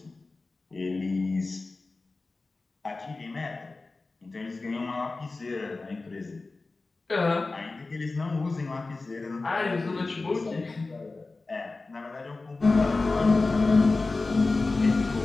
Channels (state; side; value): quieter; right; 3.6 dB